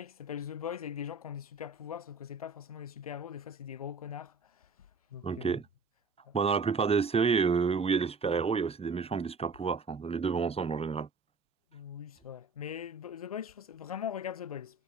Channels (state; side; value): quieter; left; 3.9 dB